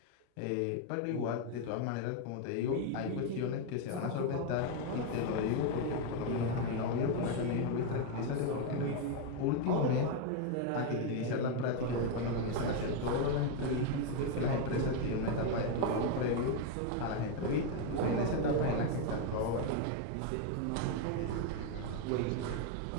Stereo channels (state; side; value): different; both; correlation 0.01